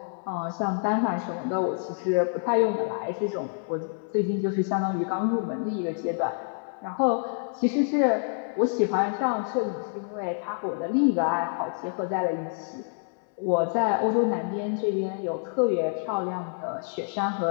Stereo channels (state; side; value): silent; right; 60 dB below the other